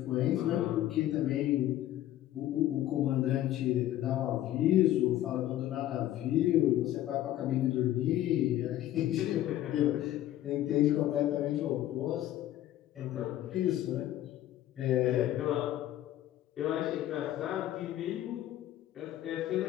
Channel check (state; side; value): quieter; right; 13.4 dB